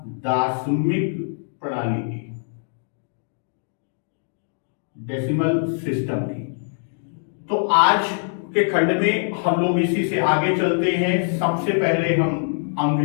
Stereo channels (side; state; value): right; silent; digital silence